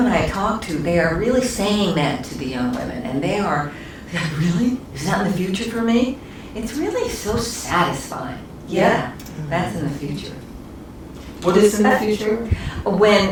I talk to, they are really saying that to the young women, and they are, really? Is that in the future for me? It's really so satisfying. Yeah, that's in the future. What is in the future?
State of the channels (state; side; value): identical; both; correlation 1.00